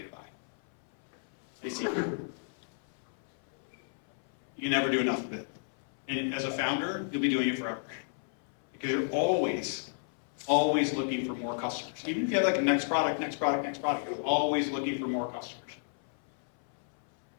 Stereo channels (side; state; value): right; silent; 56 dB below the other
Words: to buy? I see. You can never do enough of it. And as a founder, you'll be doing it forever. Because you're always looking for more customers. Even if you have like a next product, you're always looking for more customers.